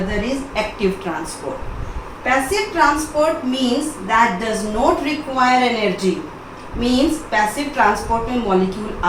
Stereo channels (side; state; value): both; identical; correlation 1.00